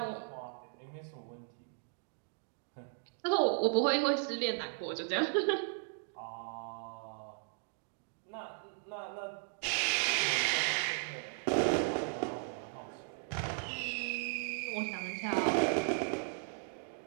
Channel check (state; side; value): silent; left; 53 dB below the other